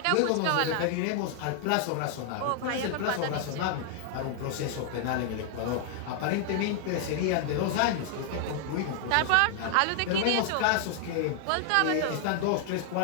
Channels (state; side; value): different; both; correlation 0.00